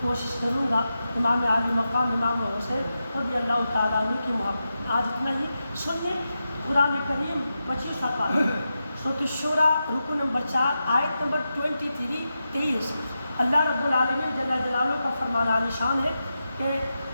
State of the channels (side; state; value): both; inverted; correlation -0.89